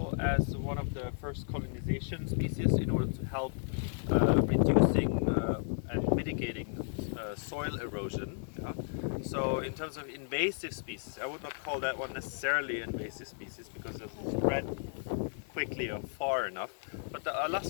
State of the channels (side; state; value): right; silent; digital silence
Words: as one of the first colonization species in order to help reducing and mitigating soil erosion. Yeah? So in terms of invasive species, I would not call that one necessarily invasive species because it doesn't spread quickly or far enough. But the